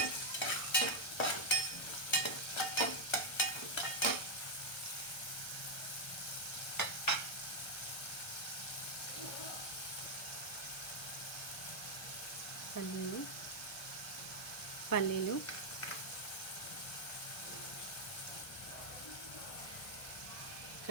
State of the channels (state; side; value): late; right; 1.1 ms